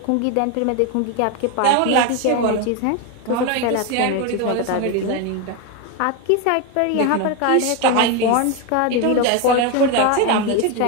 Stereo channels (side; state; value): both; different; correlation 0.02